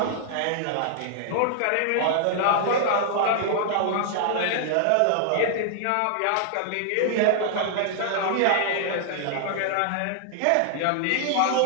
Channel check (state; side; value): different; both; correlation -0.01